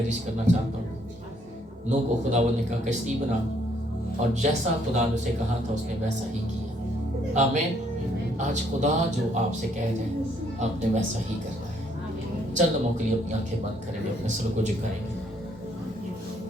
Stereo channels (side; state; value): both; normal; correlation 0.67